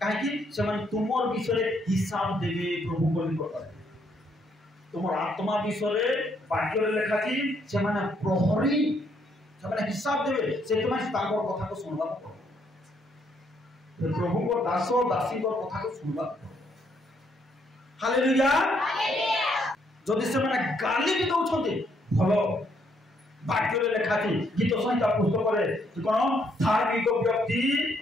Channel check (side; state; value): both; normal; correlation 0.72